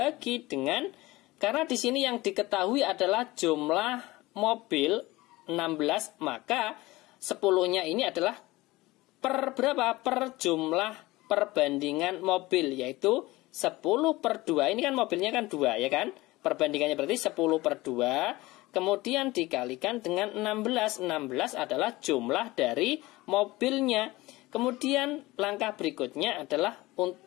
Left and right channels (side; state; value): right; quieter; 19.8 dB